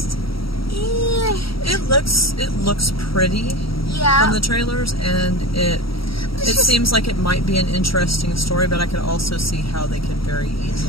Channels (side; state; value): right; late; 0.75 ms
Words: It looks pretty from the trailers, and it seems like it might be an interesting story, but I could also see how they could very